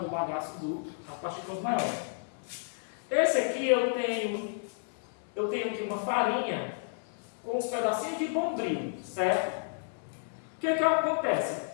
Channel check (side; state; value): right; silent; 57 dB below the other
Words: o bagaço das partículas maiores. Esse aqui eu tenho aqui uma farinha com uns pedacinhos de bombril, certo? O que acontece?